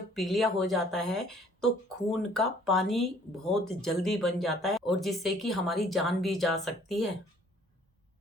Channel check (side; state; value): both; normal; correlation 0.58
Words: पीलिया हो जाता है तो खून का पानी बहुत जल्दी बन जाता है, और जिससे कि हमारी जान भी जा सकती है।